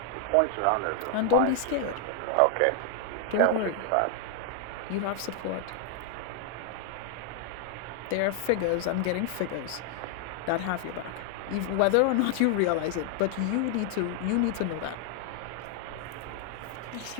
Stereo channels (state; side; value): different; both; correlation 0.00